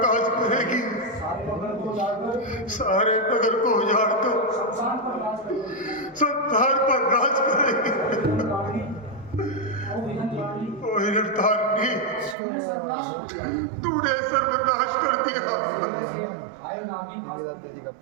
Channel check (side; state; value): left; drops out; at 12.4 s